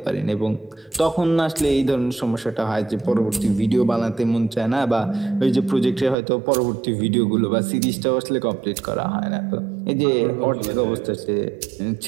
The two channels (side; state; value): left; drops out; at 6.2 s